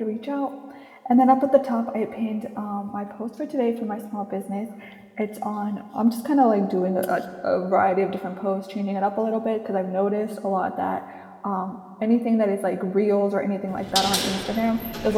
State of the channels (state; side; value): identical; both; correlation 1.00